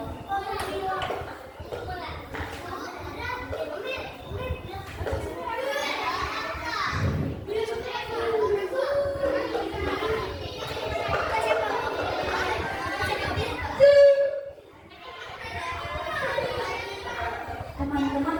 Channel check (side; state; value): both; identical; correlation 1.00